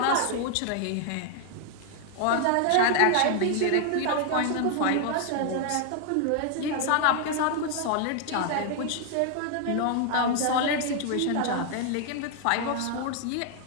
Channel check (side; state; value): both; different; correlation 0.00